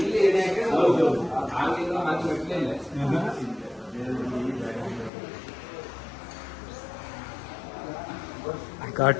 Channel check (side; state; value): right; drops out; at 5.1 s